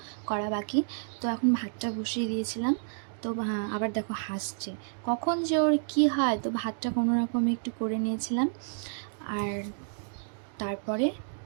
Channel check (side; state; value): left; silent; digital silence